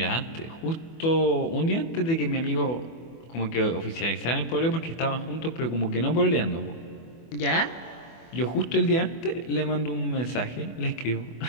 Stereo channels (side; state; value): right; late; 24 ms